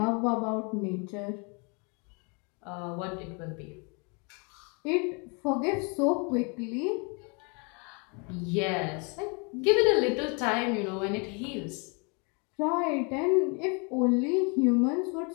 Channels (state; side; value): quieter; right; 33.4 dB